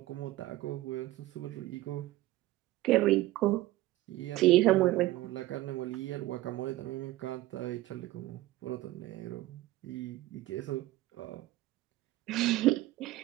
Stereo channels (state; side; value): quieter; left; 16.9 dB